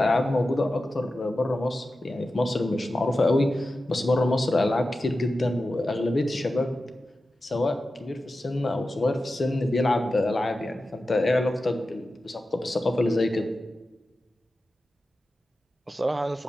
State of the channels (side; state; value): both; normal; correlation 0.93